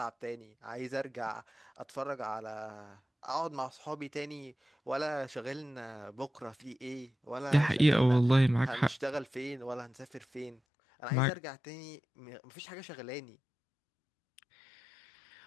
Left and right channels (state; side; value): drops out; right; at 10.6 s